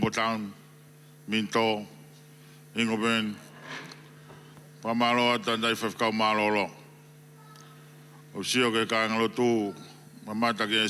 Town, Minto, Ingoben, Pamalo, Tandai Fafkau Malolo. O sio ke kāinga lotu, mamata ke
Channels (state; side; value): identical; both; correlation 1.00